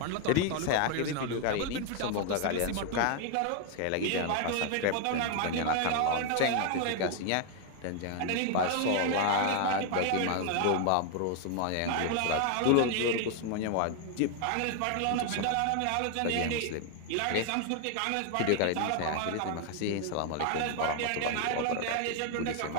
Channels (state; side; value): different; both; correlation 0.00